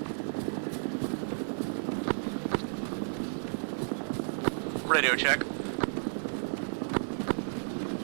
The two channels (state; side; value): silent; left; digital silence